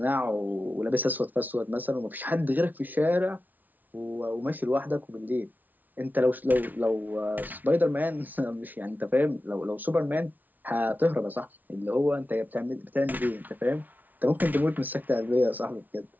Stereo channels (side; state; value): left; late; 0.081 ms